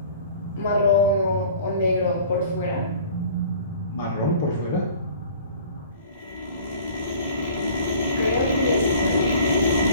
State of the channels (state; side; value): inverted; both; correlation -0.47